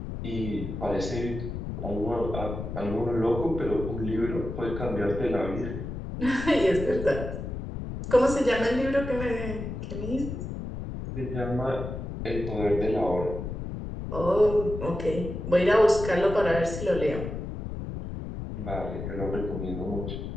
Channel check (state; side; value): noise; left; rumble, 6 dB below the sound